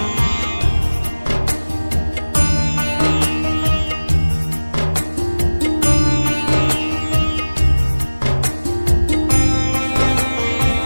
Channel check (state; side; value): inverted; both; correlation -1.00